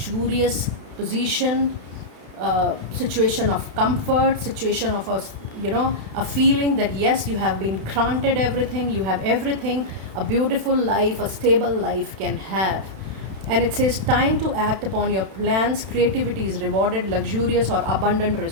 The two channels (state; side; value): late; left; 31 ms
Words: position, situation of comfort, situation of a feeling that yes, you have been granted everything, you have everything a beautiful life, a stable life can have. And it says time to act upon your plans. Creativity is rewarded, luxurious or abundant